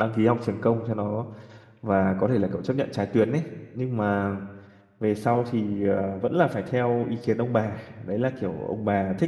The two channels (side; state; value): both; identical; correlation 1.00